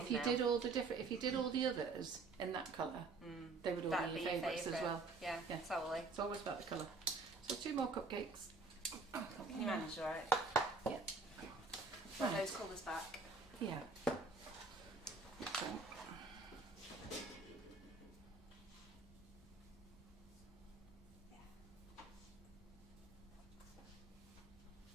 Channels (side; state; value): left; quieter; 3.9 dB